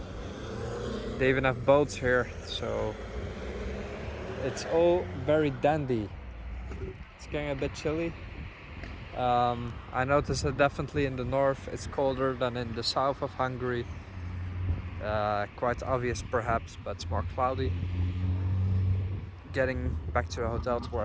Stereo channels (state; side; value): identical; both; correlation 1.00